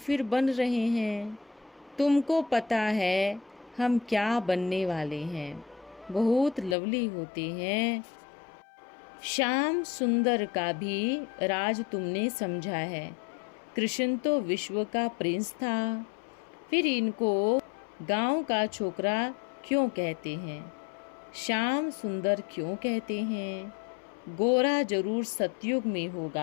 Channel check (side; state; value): right; drops out; at 6.8 s